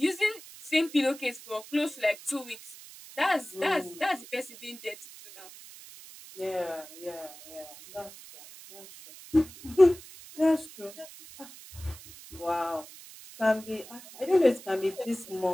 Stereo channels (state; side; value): noise; right; hiss, 17 dB below the sound